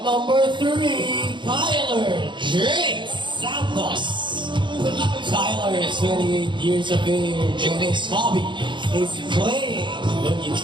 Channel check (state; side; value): late; left; 0.23 ms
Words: number 3, Tyler J. Santos. Tyler is 28 years of age and his hobby is playing the